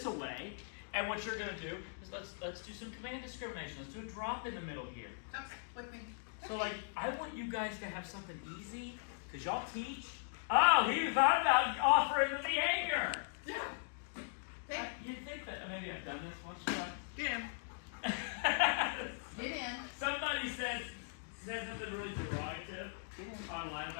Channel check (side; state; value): right; silent; digital silence